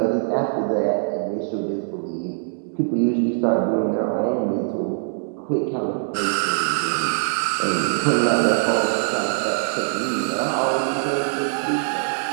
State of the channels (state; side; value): silent; left; digital silence